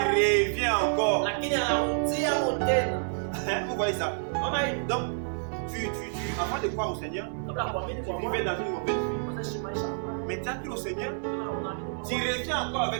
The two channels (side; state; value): left; silent; 59 dB below the other